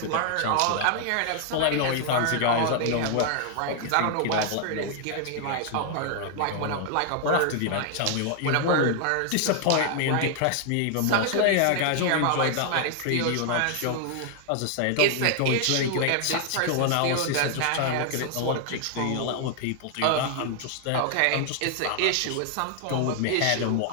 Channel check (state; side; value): different; both; correlation 0.00